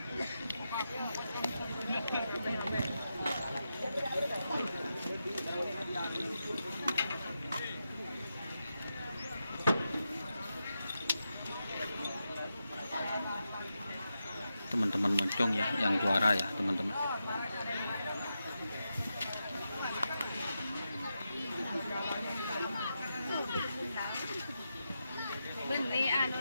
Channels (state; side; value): inverted; both; correlation -0.88